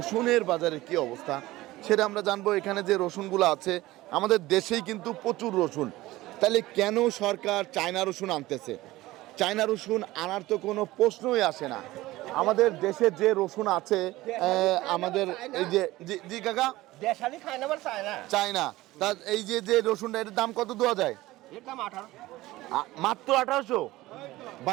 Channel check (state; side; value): quieter; left; 17.9 dB